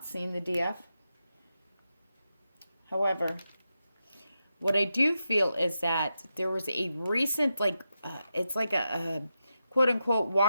seen the DF. However, what I do feel is that there was a recent, it's like a quote-unquote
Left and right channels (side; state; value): both; inverted; correlation -0.88